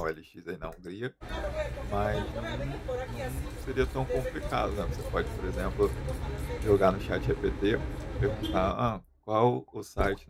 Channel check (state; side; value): identical; both; correlation 1.00